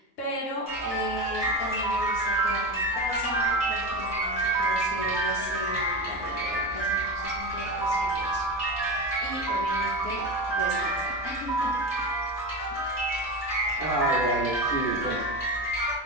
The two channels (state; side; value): normal; both; correlation 0.21